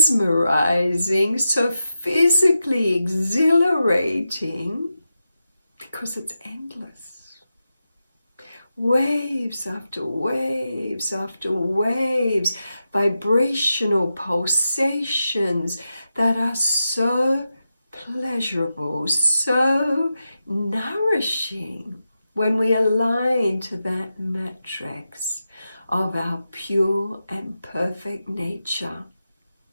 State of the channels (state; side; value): inverted; both; correlation -0.89